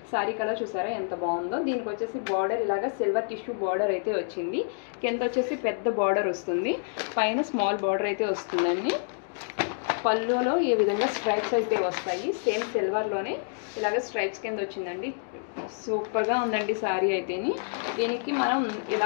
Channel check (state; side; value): silent; right; digital silence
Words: colour చూసారా ఎంత బాగుందో. దీనికి వచ్చేసి బార్డర్ ఇలాగా సిల్వర్ టిష్యూ బార్డర్ అయితే వచ్చింది. కింద వచ్చేసి పెద్ద బార్డర్ వస్తుంది, పైన స్మాల్ బార్డర్ అయితే వస్తుందండి. పళ్ళులో ఈ విధంగా స్ట్రైప్స్ అయితే వస్తాయి, సేమ్ సిల్వర్లోనే ఇలాగ స్ట్రైప్స్ కింద వచ్చిందండి. సూపర్గా ఉందండి సారీ అయితేని. దీనికి మనం